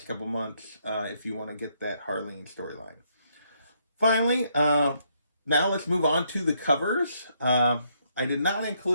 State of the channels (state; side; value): inverted; both; correlation -0.74